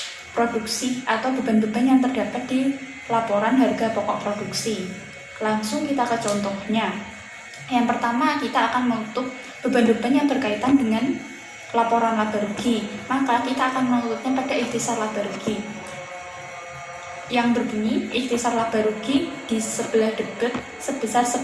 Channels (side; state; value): both; identical; correlation 1.00